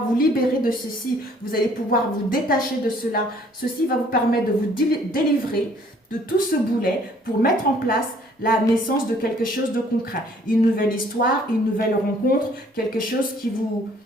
vous libérer de ceci. Vous allez pouvoir vous détacher de cela. Ceci va vous permettre de vous délivrer de tout ce boulet pour mettre en place la naissance de quelque chose de concret. Une nouvelle histoire, une nouvelle rencontre, quelque chose qui vous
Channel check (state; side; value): normal; both; correlation 0.59